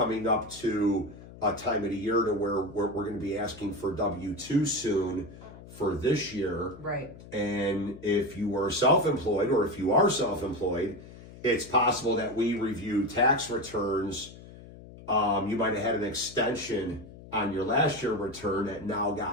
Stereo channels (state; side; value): noise; left; hum, 17 dB below the sound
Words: up to a time of the year to where we're going to be asking for W-2 soon for this year. Right. And if you were self-employed, or if you are self-employed, it's possible that we review tax returns. You might have had an extension on your last year return that now